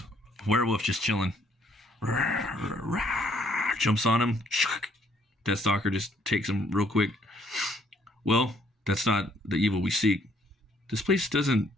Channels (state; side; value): normal; both; correlation 0.66